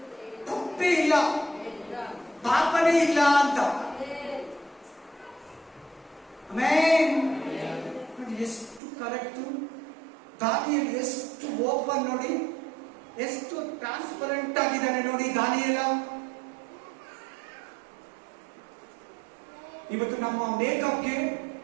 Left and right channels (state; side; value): drops out; left; at 8.8 s